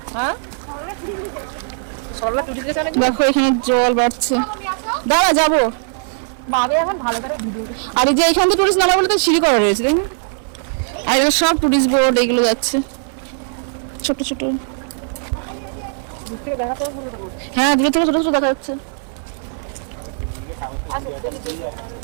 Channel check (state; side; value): silent; left; digital silence